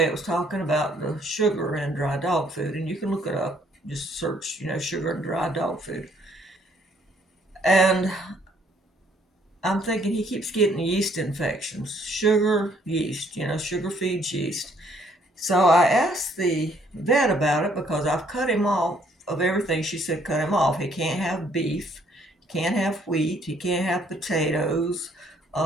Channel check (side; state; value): both; normal; correlation 0.65